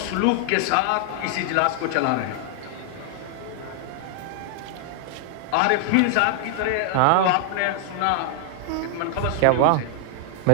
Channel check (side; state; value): both; different; correlation 0.00